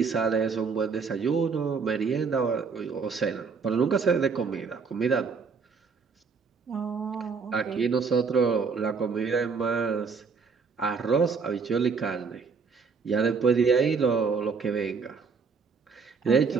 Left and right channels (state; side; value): quieter; left; 5.3 dB